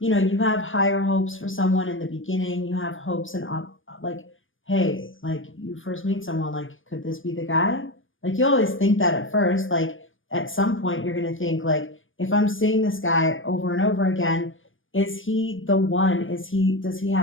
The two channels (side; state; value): right; late; 0.58 ms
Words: know, you have higher hopes for someone in the beginning. You have hopes and like, hey, like you first meet someone, like, could this be the guy? Like you always think that at first, like at some point you're gonna think like, if I'm seeing this guy over and over again, is he the one? Does he